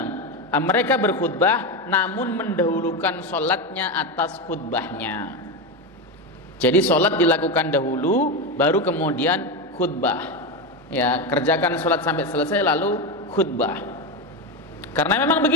mereka berkhutbah namun mendahulukan sholatnya atas khutbahnya. Jadi sholat dilakukan dahulu, baru kemudian khutbah. Ya, kerjakan sholat sampai selesai lalu khutbah. Karena memang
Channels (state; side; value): normal; both; correlation 0.14